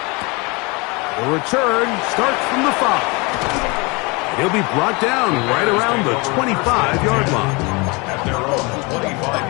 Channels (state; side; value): quieter; right; 27.7 dB